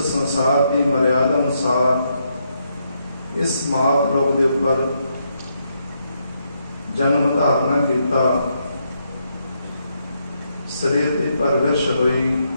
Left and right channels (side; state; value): both; inverted; correlation -0.78